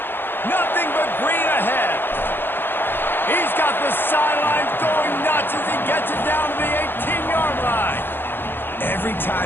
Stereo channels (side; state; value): right; late; 0.10 ms